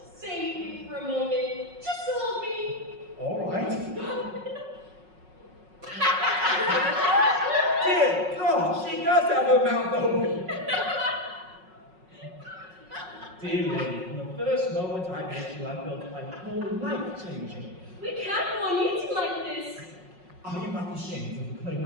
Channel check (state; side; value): late; left; 5.4 ms